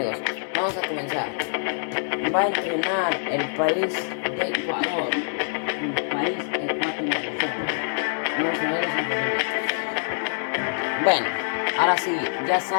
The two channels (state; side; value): silent; right; digital silence